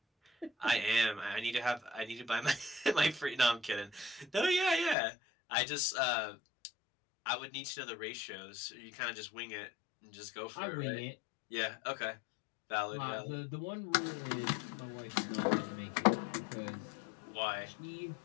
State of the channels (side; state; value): right; drops out; at 5.0 s